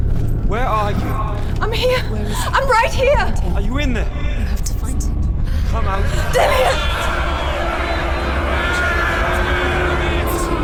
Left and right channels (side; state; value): both; identical; correlation 1.00